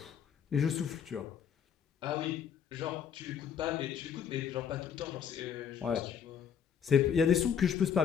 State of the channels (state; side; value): quieter; right; 8.0 dB